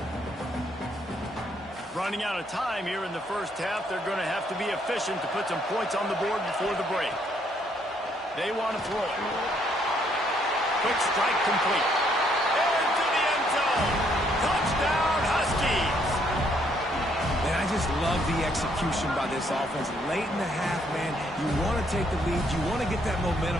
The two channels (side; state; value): both; normal; correlation 0.69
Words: Running out of time here in the first half. They're going to have to be efficient to put some points on the board before the break. They want to throw it. Quick strike complete. Into the end zone. Touchdown, Huskies. Man, I just love the execution by this offense. Late in the half, man, you want to take the lead. You want to get that